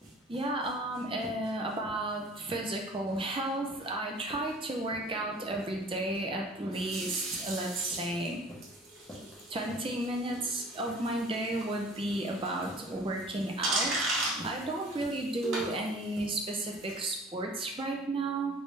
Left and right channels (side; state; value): both; normal; correlation 0.48